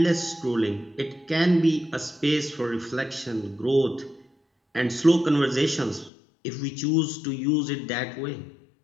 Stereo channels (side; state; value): right; drops out; at 6.1 s